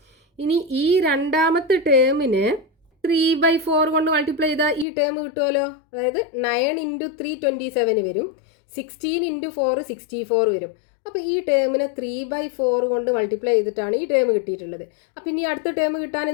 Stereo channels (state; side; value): drops out; right; at 4.9 s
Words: ഇനി ഈ രണ്ടാമത്തെ ടേമിനെ 3/4 കൊണ്ട് മൾട്ടിപ്ലൈ ചെയ്താൽ ഈ ടേം കിട്ടുമല്ലോ. അതായത് 9 × 3 27 വരും, 16 × 4 64 വരും. അപ്പോൾ ഈ ടേമിനെ 3/4 കൊണ്ട് മൾട്ടിപ്ലൈ ചെയ്തിട്ടാണ് ഈ ടേം കിട്ടിയിട്ടുള്ളത്. അപ്പോൾ ഇനി അടുത്ത ടേം കിട്ടാൻ